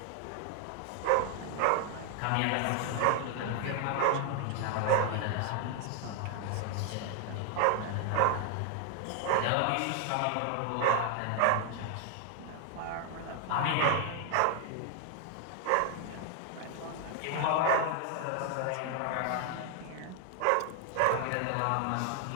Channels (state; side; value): different; both; correlation 0.00